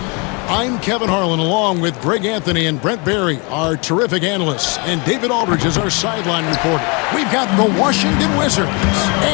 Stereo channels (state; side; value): quieter; right; 31.3 dB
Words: I'm Kevin Harlan, along with Greg Anthony and Brent Barry, our terrific analysts, and David Aldridge is our sideline reporter. We've got the Washington Wizards